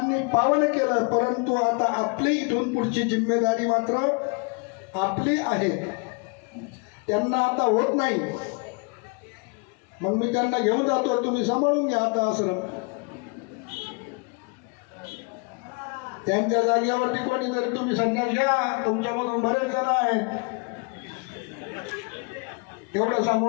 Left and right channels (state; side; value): quieter; right; 33.0 dB